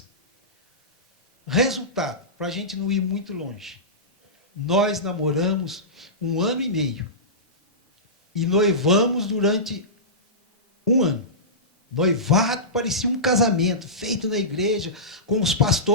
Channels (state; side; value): normal; both; correlation -0.18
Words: Resultado, para a gente não ir muito longe. Nós namoramos 1 ano e meio. E noivamos durante 1 ano. Noivado parecia um casamento, feito na igreja, com os